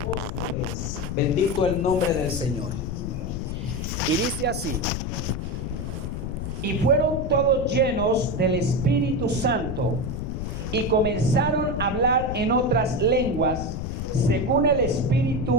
Bendito el nombre del Señor. Y dice así: y fueron todos llenos del Espíritu Santo y comenzaron a hablar en otras lenguas, según el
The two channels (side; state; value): left; noise; rumble, 4 dB below the sound